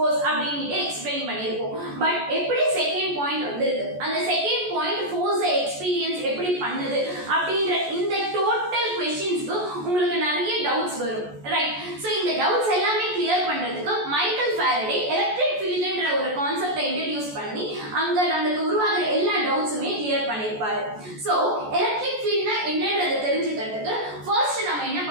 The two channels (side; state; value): left; late; 14 ms